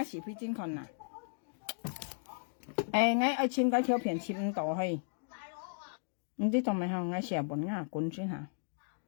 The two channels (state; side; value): silent; right; digital silence